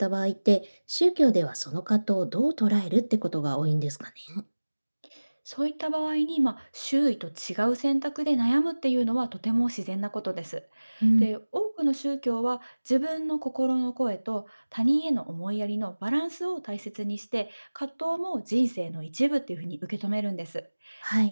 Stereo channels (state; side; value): inverted; both; correlation -1.00